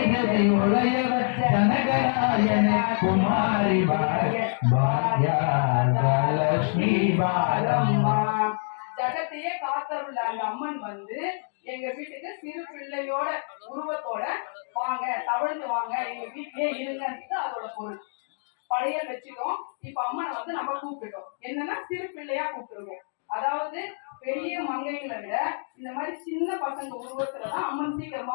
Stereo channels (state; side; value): silent; right; digital silence